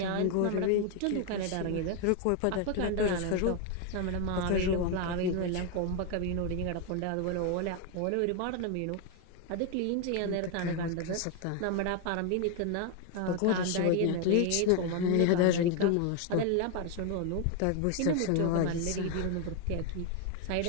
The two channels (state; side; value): different; both; correlation 0.01